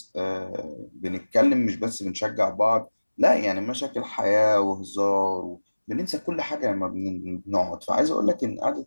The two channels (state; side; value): inverted; both; correlation -1.00